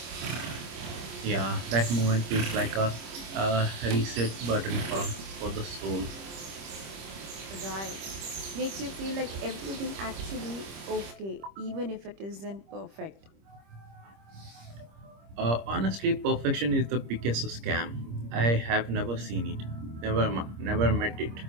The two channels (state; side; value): late; left; 26 ms